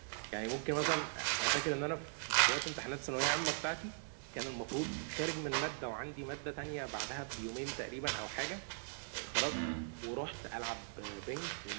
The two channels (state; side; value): silent; left; 51 dB below the other